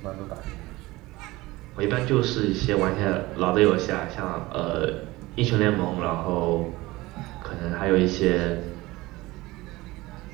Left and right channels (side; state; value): left; quieter; 20.1 dB